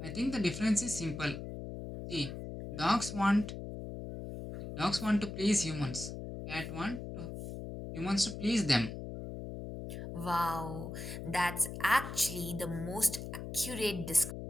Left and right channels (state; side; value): noise; left; hum, 8 dB below the sound